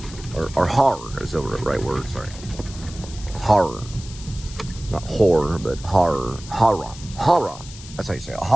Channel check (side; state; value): left; noise; hiss, 16 dB below the sound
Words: Or horror is the right word, sorry. Horror. Not horror, but horror. Horror. Horror. That's how you say it.